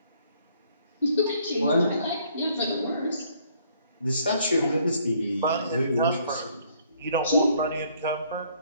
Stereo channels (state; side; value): inverted; both; correlation -0.64